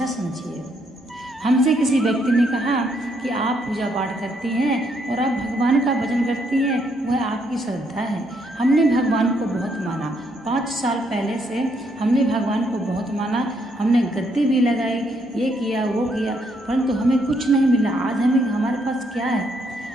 समझिए। हमसे किसी व्यक्ति ने कहा कि आप पूजा पाठ करती हैं और आप भगवान का भजन करती हैं, वह आपकी श्रद्धा है। हमने भगवान को बहुत माना, 5 साल पहले से हमने भगवान को बहुत माना, हमने गद्दी भी लगाई, ये किया वो किया, परंतु हमें कुछ नहीं मिला। आज हमारे पास क्या है?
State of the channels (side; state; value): both; normal; correlation 0.73